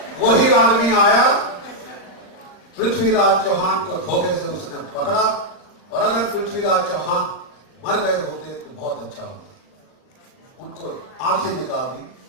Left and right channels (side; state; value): right; late; 39 ms